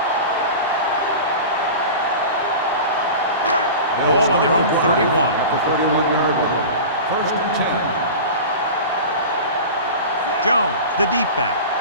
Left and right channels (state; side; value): inverted; both; correlation -0.32